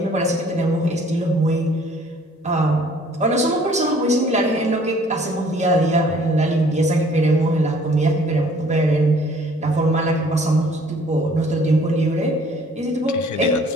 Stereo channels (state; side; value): normal; both; correlation 0.56